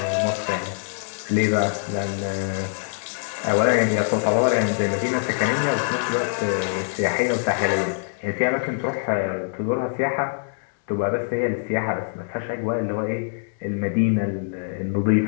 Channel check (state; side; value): silent; right; digital silence